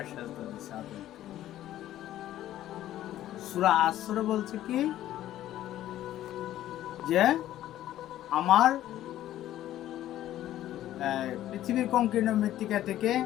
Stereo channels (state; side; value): quieter; right; 13.2 dB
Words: সেজদা দিছে আদমকে। সূরা আসরে বলছে কি যে আমার পৃথিবীর সংকীর্ণ মৃত্তিকা থেকে